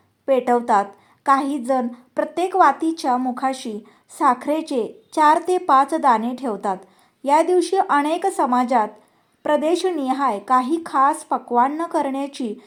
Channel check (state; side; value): identical; both; correlation 1.00